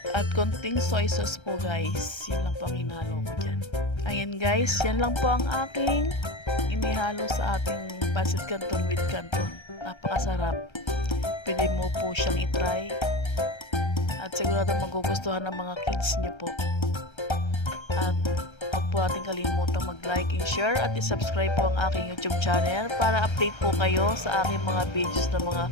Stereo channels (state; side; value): late; right; 1.3 ms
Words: at konting soy sauce po guys. Yan lang po ang hinalo ko dyan. Ayan guys, yan lang po ang aking inihalo sa ating Pansit Canton with Canton. Napakasarap. Pwede mo po siyang itry. At sigurado magugustuhan ng mga kids niyo po. At huwag po natin kalimutan mag-like and share at i-subscribe po ang aking YouTube channel para update po kayo sa aking mga videos na mga